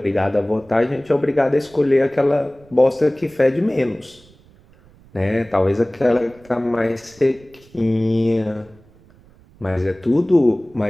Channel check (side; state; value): right; noise; rumble, 27 dB below the sound